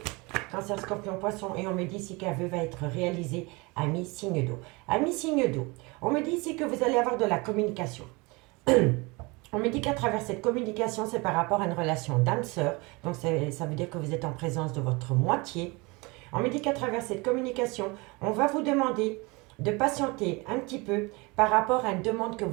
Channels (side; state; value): left; quieter; 26.2 dB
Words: Cancer, Scorpion, Poisson, et on me dit ici qu'un vœu va être réalisé à mi-signe d'eau. À mi-signe d'eau, on me dit ici que vous allez avoir de la communication. On me dit qu'à travers cette communication, c'est par rapport à une relation d'âme-sœur. Donc, ça veut dire que vous êtes en présence de votre moitié. On me dit qu'à travers cette communication, on va vous demander de patienter un petit peu par rapport à une demande que